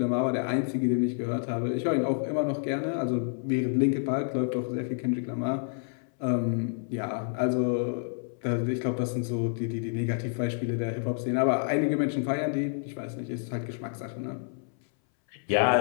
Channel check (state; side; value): silent; right; 59 dB below the other